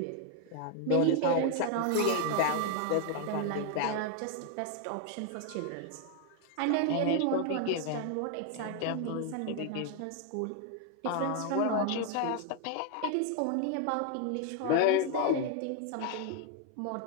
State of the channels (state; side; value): different; both; correlation 0.01